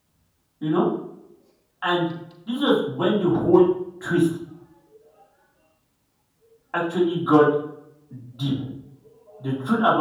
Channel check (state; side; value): identical; both; correlation 1.00